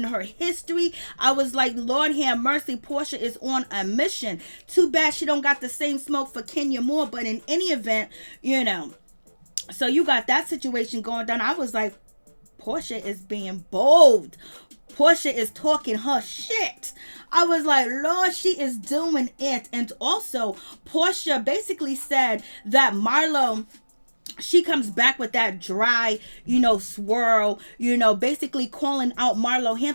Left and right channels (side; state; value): both; inverted; correlation -1.00